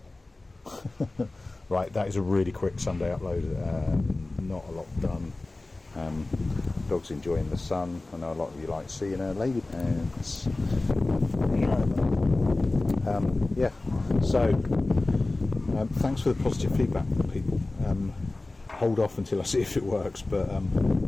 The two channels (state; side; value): quieter; right; 3.0 dB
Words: Right, that is a really quick Sunday upload. Not a lot done. Dog's enjoying the sun. I know a lot of you like seeing her lady pants. Yeah, so thanks for the positive feedback, people. hold off until I see if it works, but I